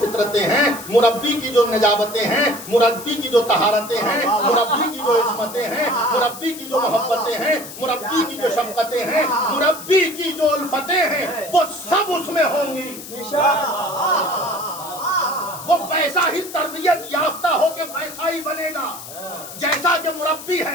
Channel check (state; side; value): noise; left; hiss, 13 dB below the sound